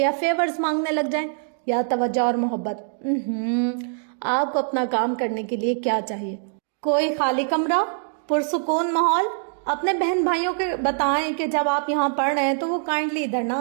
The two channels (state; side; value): silent; left; digital silence